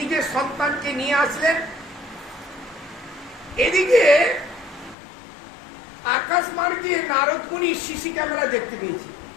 সন্তানকে নিয়ে আসলেন। এদিকে আকাশ মার্গে নারদ মুনি সিসি ক্যামেরা দেখতে পেয়েছি।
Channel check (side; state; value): right; drops out; at 5.0 s